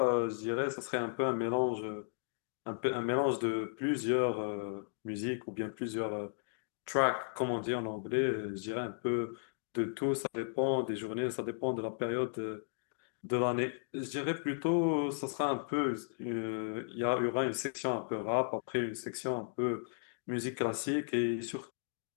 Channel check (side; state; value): right; silent; digital silence